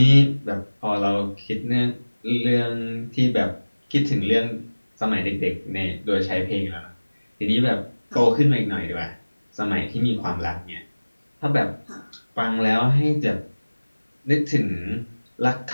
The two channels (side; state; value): both; inverted; correlation -1.00